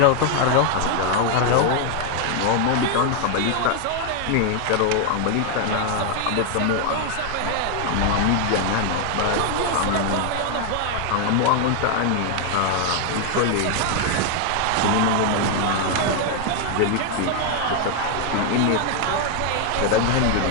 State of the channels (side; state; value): both; different; correlation 0.01